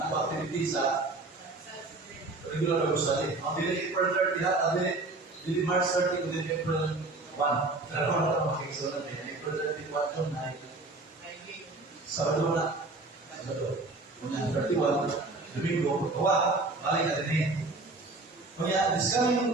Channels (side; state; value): left; quieter; 3.2 dB